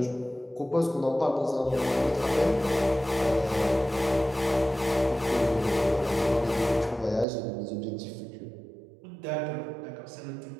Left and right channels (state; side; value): drops out; left; at 7.2 s